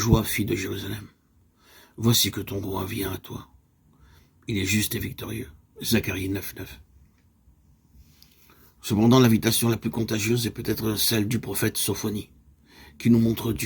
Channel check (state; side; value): identical; both; correlation 1.00